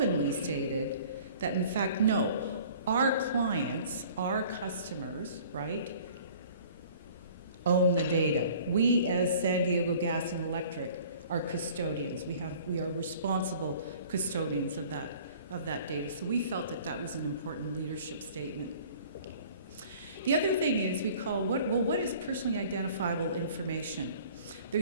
stated that in fact, no, our clients, our customers, right, own the data. We as San Diego Gas and Electric are custodians. We are responsible custodians of that data. So we felt that was an important leadership statement. The other thing is we call, what is personally identifiable information?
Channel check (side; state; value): both; inverted; correlation -0.49